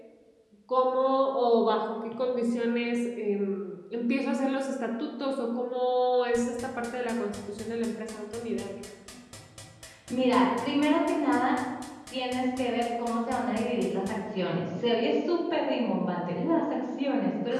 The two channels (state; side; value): identical; both; correlation 1.00